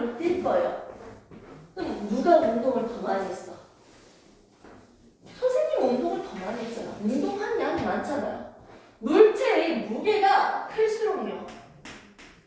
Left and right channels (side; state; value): both; identical; correlation 1.00